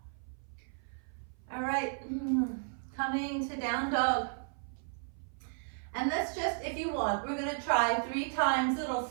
All right, coming to down dog. And let's just, if you want, we're going to try 3 times little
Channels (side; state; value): left; silent; 55 dB below the other